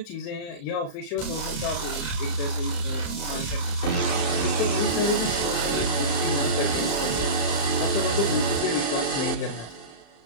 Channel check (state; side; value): late; right; 35 ms